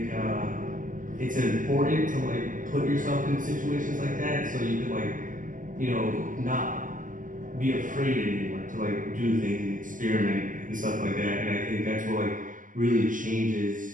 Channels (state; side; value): late; left; 0.38 ms